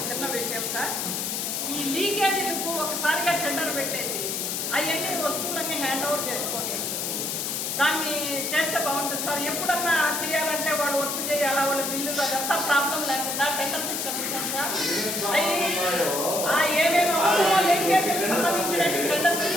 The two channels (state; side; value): noise; left; hiss, 2 dB below the sound